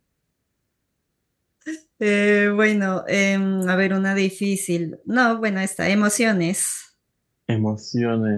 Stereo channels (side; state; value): both; identical; correlation 1.00